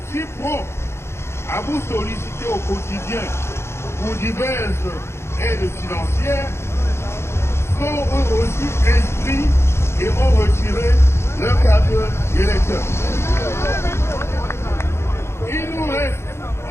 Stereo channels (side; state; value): right; late; 0.13 ms